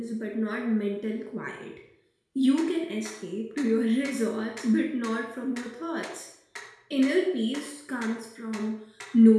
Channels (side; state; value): both; identical; correlation 1.00